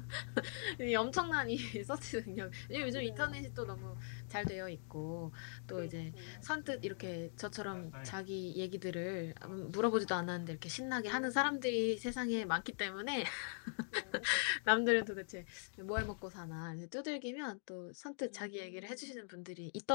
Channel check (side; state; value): right; silent; digital silence